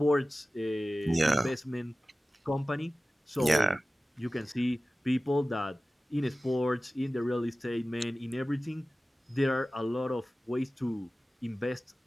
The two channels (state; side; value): normal; both; correlation 0.96